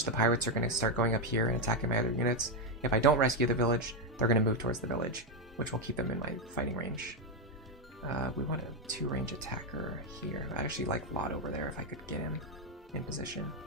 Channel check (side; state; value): both; normal; correlation 0.05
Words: the pirates are going to start going up here and attacking my other units. If I don't rescue the village, they're going to move towards the village, which will keep them in my fighting range. We want a 2-range attacker here. I actually like Lot over there if I could get him in position.